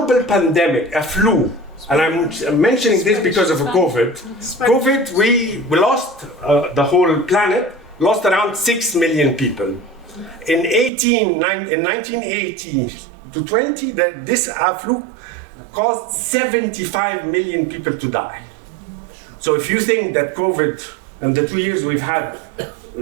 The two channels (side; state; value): left; drops out; at 10.9 s